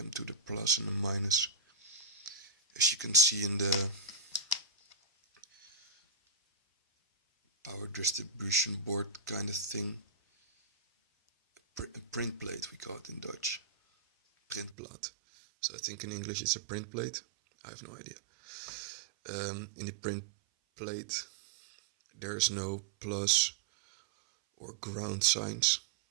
to the plus and the minus. As you can see in the power distribution board kind of thing, a print plate we call it in Dutch, printplaat. So I think in English it's a print plate, I have no idea. In the print plate there's no plus or ground signs,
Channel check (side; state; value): left; drops out; at 14.8 s